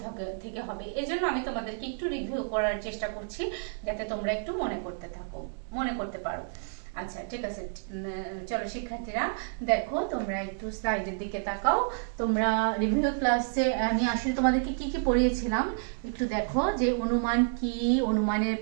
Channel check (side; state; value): left; silent; digital silence